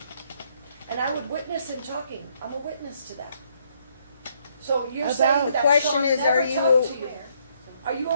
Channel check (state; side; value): inverted; both; correlation -0.70